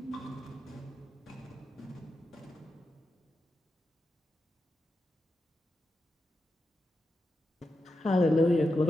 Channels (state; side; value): normal; both; correlation 0.88